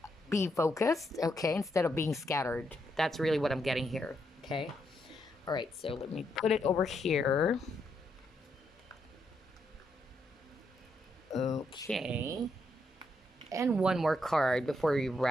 be focused. Okay, instead of being scattered. That's really what I'm getting here. Okay, all right, so let me put it over here. Okay. And one more card before we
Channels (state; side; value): normal; both; correlation 0.79